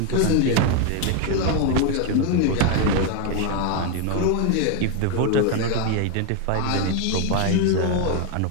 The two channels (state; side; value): different; both; correlation 0.01